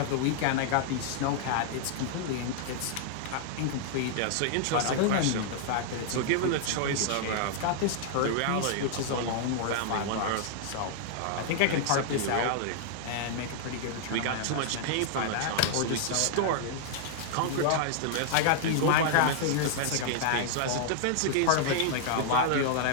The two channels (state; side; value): different; both; correlation -0.01